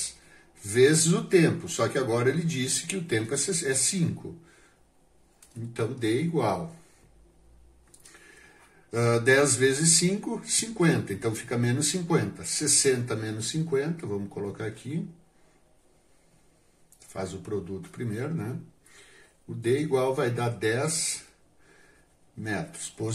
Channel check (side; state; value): both; identical; correlation 1.00